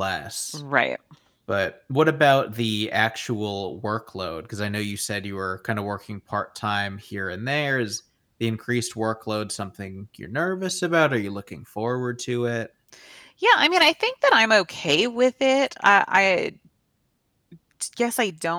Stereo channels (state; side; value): identical; both; correlation 1.00